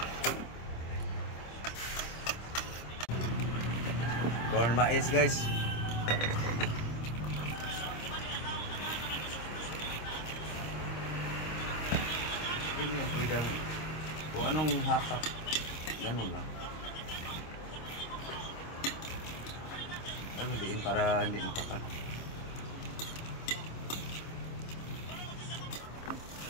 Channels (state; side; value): late; right; 26 ms